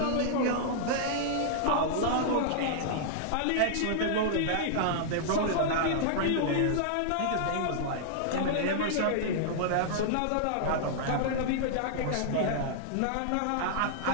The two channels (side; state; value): both; different; correlation -0.01